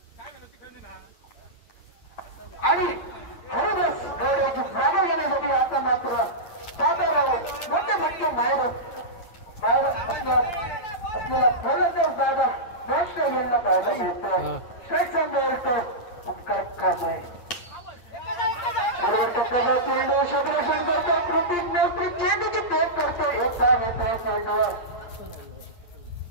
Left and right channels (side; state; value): right; late; 8.6 ms